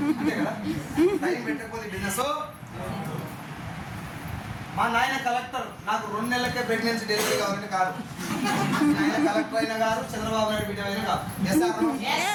అంతే కదా, టైం పెట్టకపోతే బిజినెస్. మా నాయన కలెక్టర్, నాకు 2 నెలలకే ప్రెగ్నెన్సీ డెలివరీ కావాలంటే కాదు. నాయన కలెక్టర్ అయినా కాదు, చంద్రబాబు నాయుడు బిడ్డ అయినా కాదు. Yes or no?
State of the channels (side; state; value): both; identical; correlation 1.00